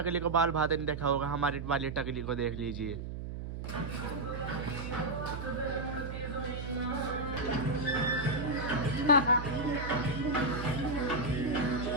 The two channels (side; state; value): right; noise; hum, 7 dB below the sound